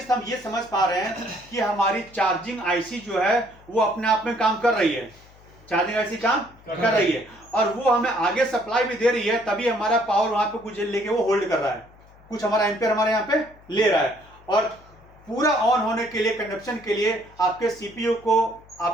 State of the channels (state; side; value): noise; left; hum, 25 dB below the sound